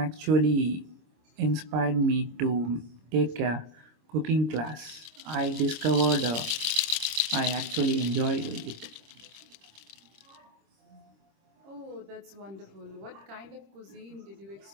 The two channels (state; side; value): late; left; 26 ms